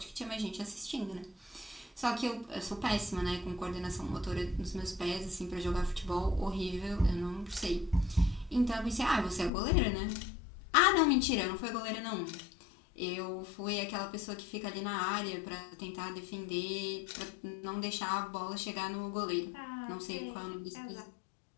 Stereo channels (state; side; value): drops out; right; at 9.5 s